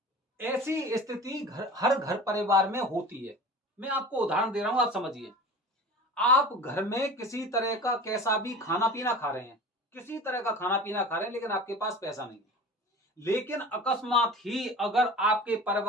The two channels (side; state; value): both; normal; correlation 0.37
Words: ऐसी स्थिति हर घर परिवार में होती है। मैं आपको उदाहरण दे रहा हूं, आप समझिए। आप घर में किसी तरह का कैसा भी खाना पीना खा रहे हैं, किसी तरह का खाना पीना खा रहे हैं, लेकिन आपके पास पैसा नहीं है। लेकिन अकस्मात ही अगर आपके